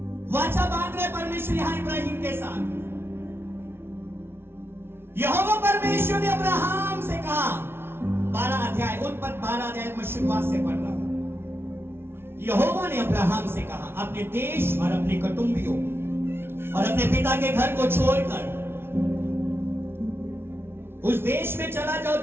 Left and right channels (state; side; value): late; left; 0.12 ms